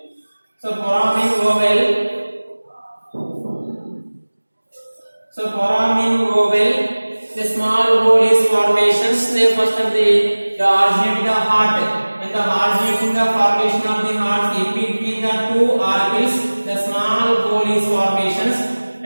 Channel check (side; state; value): both; inverted; correlation -1.00